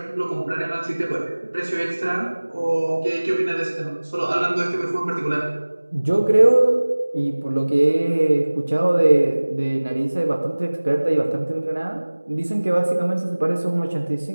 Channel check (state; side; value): inverted; both; correlation -1.00